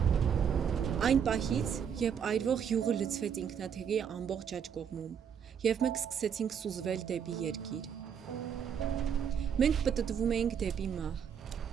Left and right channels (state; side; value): quieter; left; 7.7 dB